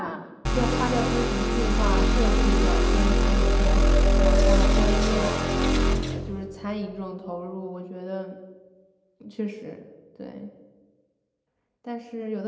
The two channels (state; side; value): identical; both; correlation 1.00